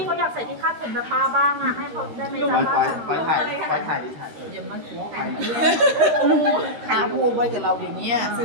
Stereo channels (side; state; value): left; late; 13 ms